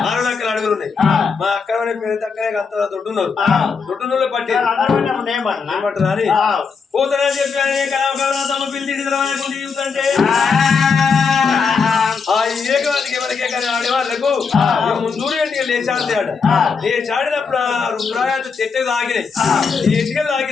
రక్కల అడుగులు ఉన్నాయి మా అక్క పేరు తక్కనే అంత దొడ్డున్నారు దొడ్డులో పట్టి ఏమంటారు అని పోతానని చెప్పి కమరాతమ్మ పిల్లి చూస్తుంటే ఆ ఏకవాదికి ఎవరికే కానీ ఆడేవాళ్ళకు ముందు లేచాడతాడు లేచాడినప్పుడు ఆ రుద్రాయాలు చెట్టు తాగినాయి ఎటుకలు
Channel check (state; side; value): quieter; right; 5.4 dB